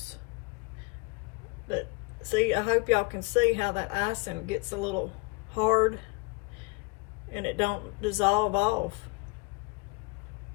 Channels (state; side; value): quieter; right; 26.6 dB